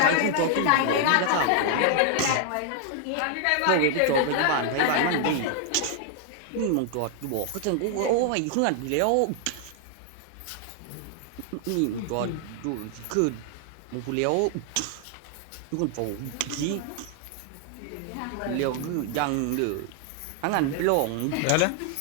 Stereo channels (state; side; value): different; both; correlation 0.00